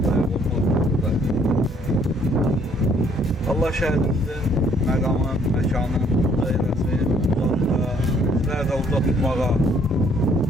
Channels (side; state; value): both; normal; correlation 0.64